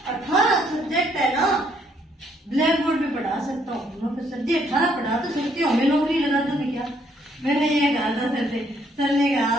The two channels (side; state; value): both; normal; correlation 0.69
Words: 18 सब्जेक्ट है ना ब्लैक बोर्ड पे पढ़ा सकता हूँ। सर जी 18 पढ़ा तो सकती हूँ, हमें नौकरी लगा दोगे क्या? मैंने ये कहा था सर से। सर ने कहा,